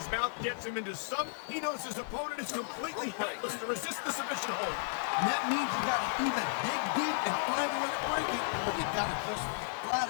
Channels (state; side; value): silent; right; digital silence